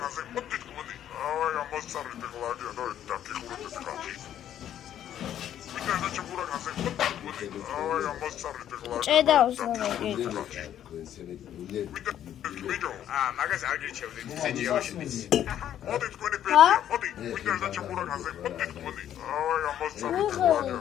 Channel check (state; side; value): quieter; right; 10.7 dB